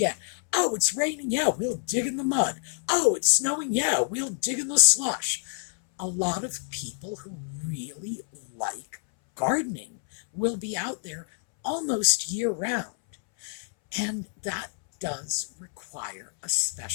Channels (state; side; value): silent; right; 60 dB below the other